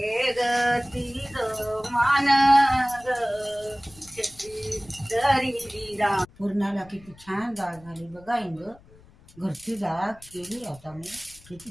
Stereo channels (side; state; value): left; noise; rumble, 24 dB below the sound